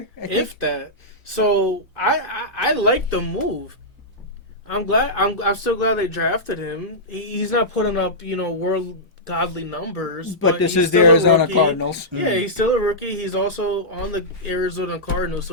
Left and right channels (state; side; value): normal; both; correlation -0.12